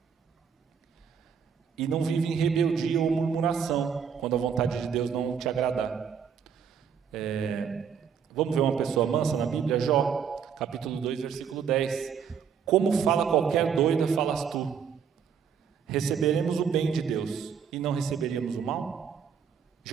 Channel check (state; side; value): quieter; left; 7.2 dB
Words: e não vive em rebeldia ou murmuração quando a vontade de Deus não te agradar. Vamos ver uma pessoa mansa na Bíblia? Jó, capítulo 2, versículo 10. Como fala qualquer doida, falas tu. Receberemos o bem de Deus e não receberíamos o mal?